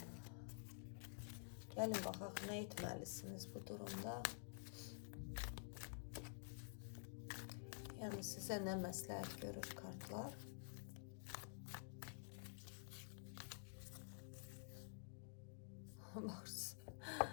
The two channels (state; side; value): silent; right; digital silence